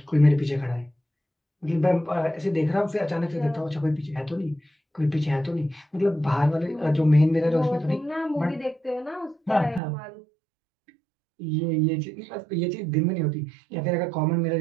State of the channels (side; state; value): left; drops out; at 9.8 s